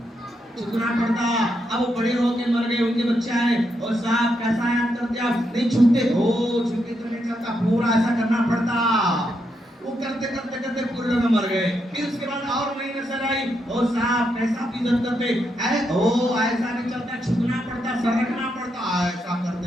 چھکنا پڑتا. اب وہ بڑے ہو کے مر گئے، ان کے بچے آئے، او صاحب کیسا یاد کرتے آپ؟ نہیں چھوٹے چھوٹے تو نہیں چلتا، پورا ایسا کرنا پڑتا. وہ کرتے پورے لوگ مر گئے. پھر اس کے بعد اور نئی نسل آئی، او صاحب کیسا عزت کرتے، ایسا نہیں چلتا، چھکنا پڑتا، سر رکھنا پڑتا. ایسا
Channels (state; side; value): normal; both; correlation 0.81